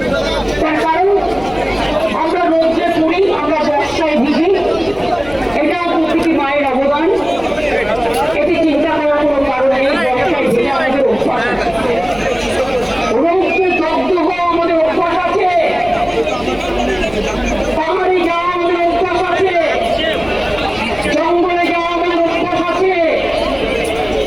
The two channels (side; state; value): left; noise; rumble, 19 dB below the sound